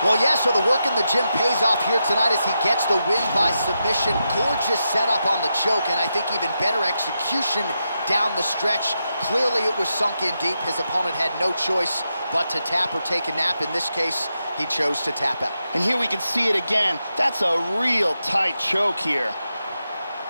Well, yeah, so the work in the gym pays off here tonight as he gets the win by submission. Gorgeous setup on the choke, and I think even better execution down the stretch. Clearly, it was sunk in deep. His opponent had no choice but to tap or take a nap. In this case, he chose to tap out. And here we can see it again. That's a real tight choke here.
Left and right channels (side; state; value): both; inverted; correlation -0.86